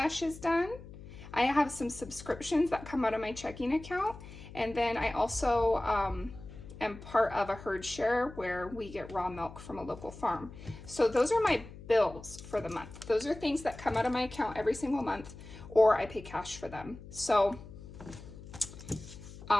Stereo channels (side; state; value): left; noise; hum, 15 dB below the sound